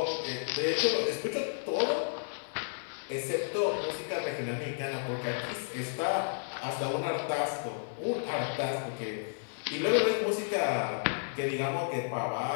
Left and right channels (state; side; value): silent; right; digital silence